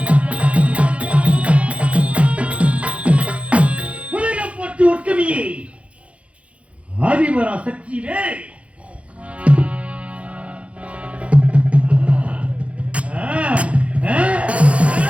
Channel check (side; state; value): left; late; 0.063 ms